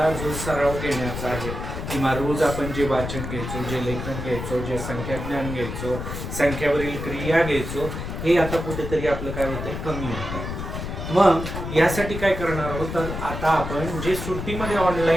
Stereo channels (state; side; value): noise; left; rumble, 6 dB below the sound